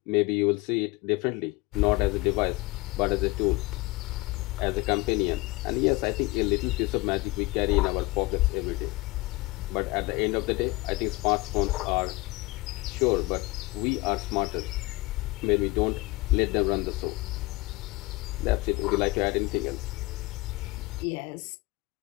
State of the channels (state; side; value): quieter; right; 22.3 dB